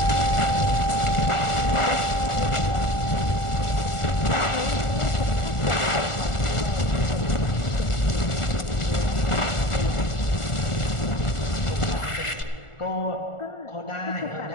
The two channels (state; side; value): late; right; 1.4 ms